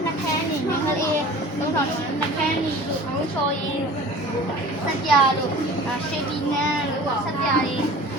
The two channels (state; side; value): normal; both; correlation 0.42